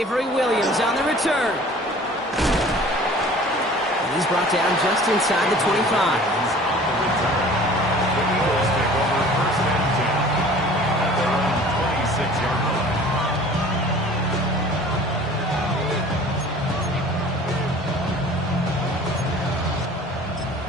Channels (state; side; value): normal; both; correlation 0.47